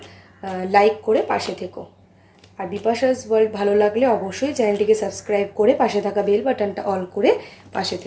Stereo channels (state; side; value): identical; both; correlation 1.00